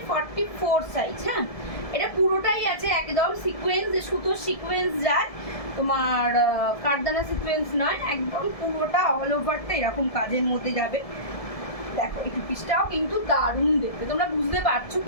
44 সাইজ। হ্যাঁ, এটা পুরোটাই আছে একদম সিকোয়েন্স, সুতোর সিকোয়েন্স যায়, তোমার কারদানা সিকোয়েন্স নয়, একদম পুরোটা অল ওভারটা এরকম কাজের মধ্যে যাবে। দেখো এই পিসটাও কিন্তু দারুণ দেখতে, তোমরা বুঝতে পারছো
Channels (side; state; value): right; late; 1.7 ms